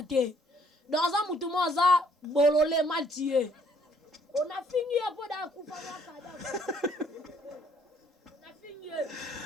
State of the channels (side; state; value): both; normal; correlation 0.64